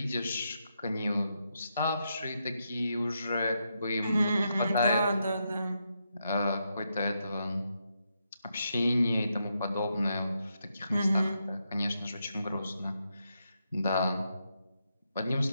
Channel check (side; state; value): both; inverted; correlation -0.82